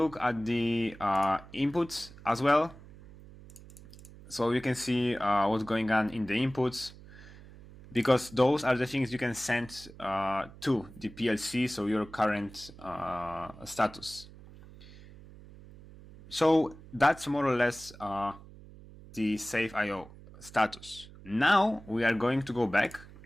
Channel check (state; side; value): noise; right; hum, 19 dB below the sound